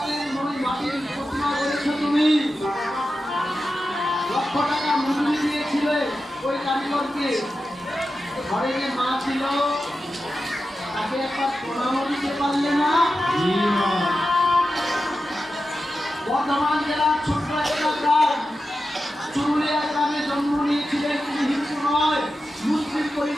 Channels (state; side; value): normal; both; correlation 0.91